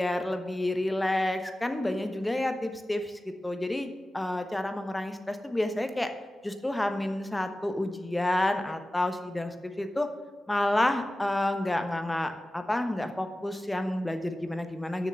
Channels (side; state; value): both; normal; correlation 0.95